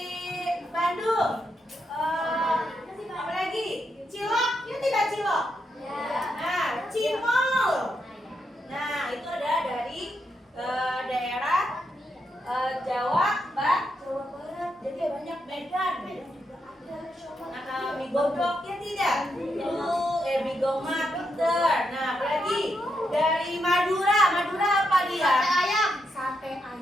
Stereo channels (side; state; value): both; normal; correlation 0.82